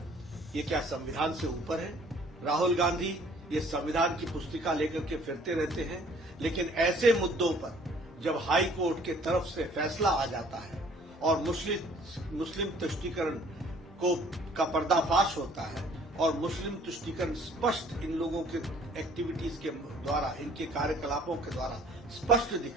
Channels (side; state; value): both; normal; correlation 0.56